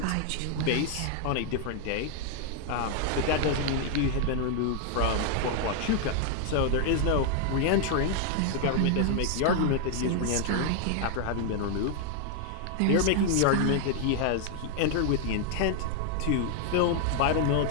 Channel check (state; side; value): different; both; correlation 0.00